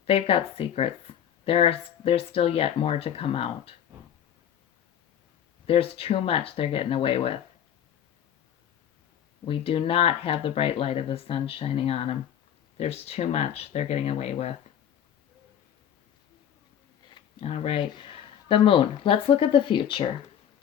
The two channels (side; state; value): right; quieter; 9.5 dB